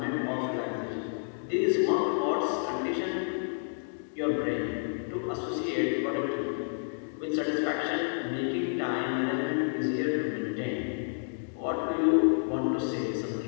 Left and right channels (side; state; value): right; silent; digital silence